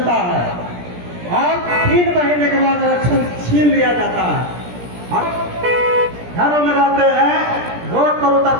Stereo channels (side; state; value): left; late; 17 ms